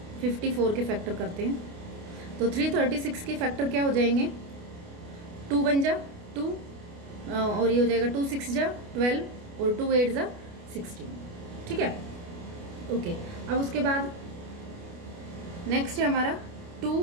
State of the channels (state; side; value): late; left; 29 ms